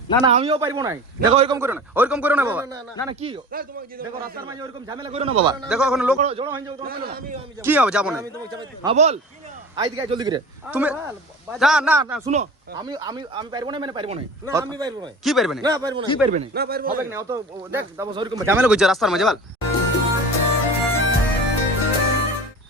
না না আমিও পারবো না। দেখো ওইরকম করো না, ওইরকম করো না বাবা। না না কি দেখো রাস্তার মাঝে ওইরকম ঝামেলা করো না বাবা। দেখো এখন লোক জড়ো হয়ে যাবে, কি হবে যাবো না। হ্যাঁ বল আই দিকে জলদি করে তুমি। না না না শুনো, আমি আমি আমি পারবো না মানে পারবো না। না আমি পারবো না। কি পারবে না? না পারবো না। কি পারবে না? না পারবো হবে না অত। দেখ তারপর ওইরকম ঝামেলা করছে রাস্তার মাঝে বল।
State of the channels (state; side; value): normal; both; correlation 0.37